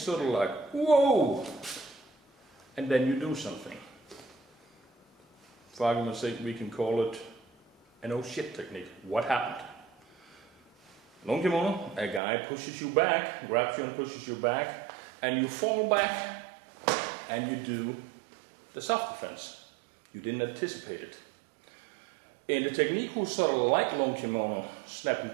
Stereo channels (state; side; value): drops out; left; at 12.2 s